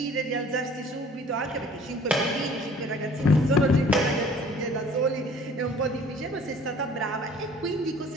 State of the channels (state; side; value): normal; both; correlation 0.51